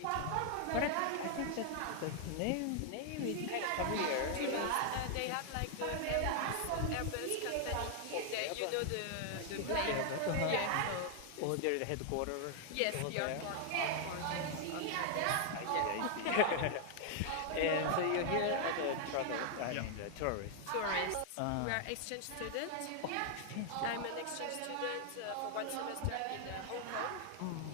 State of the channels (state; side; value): different; both; correlation 0.00